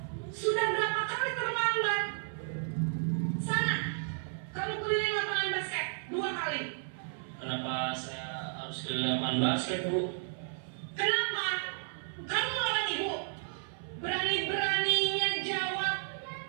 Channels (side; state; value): left; silent; 56 dB below the other